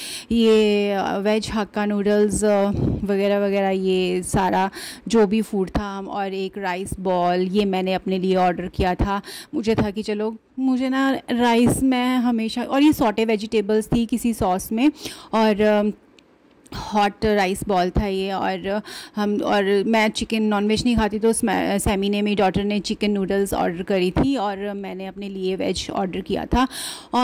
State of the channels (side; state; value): both; identical; correlation 1.00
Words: ये वेज हक्का नूडल्स वगैरह वगैरह ये सारा जो भी फूड था, और एक राइस बॉल ये मैंने अपने लिए ऑर्डर किया था। मुझे था कि चलो मुझे ना राइस में हमेशा, और ये सॉटे वेजिटेबल्स थी किसी सॉस में, और हॉट राइस बॉल था ये। और मैं चिकन नॉनवेज नहीं खाती, तो सैमी ने, मेरी डॉटर ने चिकन नूडल्स ऑर्डर करी थी और मैंने अपने लिए वेज ऑर्डर किया था।